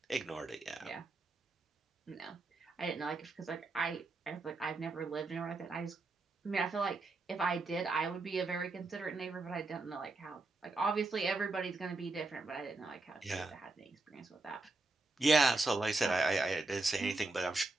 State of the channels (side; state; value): left; quieter; 3.2 dB